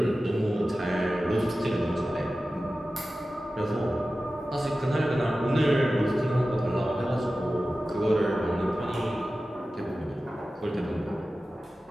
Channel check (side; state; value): both; normal; correlation 0.95